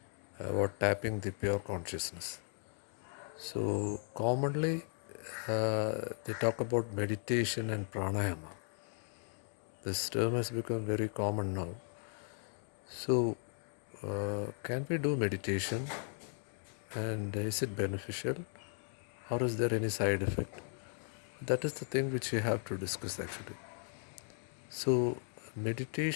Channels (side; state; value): right; silent; 53 dB below the other